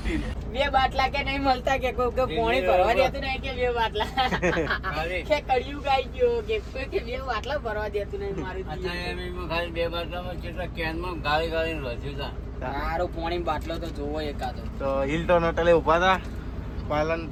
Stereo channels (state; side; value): identical; both; correlation 1.00